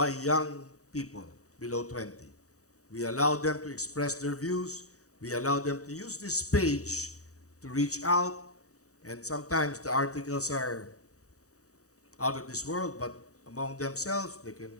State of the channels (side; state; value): right; late; 0.66 ms